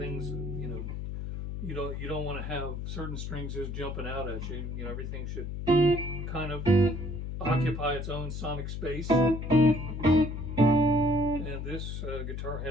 you don't want to have certain strings just jumping out at you. You know, everything should kind of occupy its own sonic space. And this guitar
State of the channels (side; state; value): left; noise; hum, 5 dB below the sound